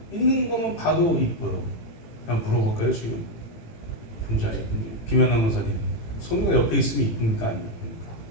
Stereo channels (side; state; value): right; late; 18 ms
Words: 있는 것만 봐도 이뻐요. 그냥 물어볼까요 지금? 혼자 이쁜지 김연아 원사님 소미가 옆에 있으면 이쁩니까 안 이쁩니까?